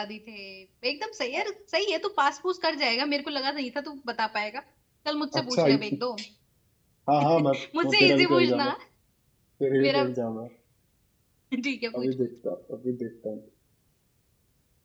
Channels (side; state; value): both; identical; correlation 1.00